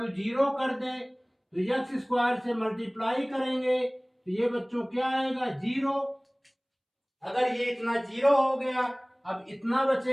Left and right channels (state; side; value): identical; both; correlation 1.00